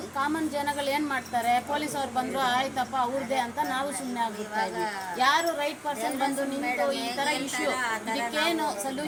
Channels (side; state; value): both; identical; correlation 1.00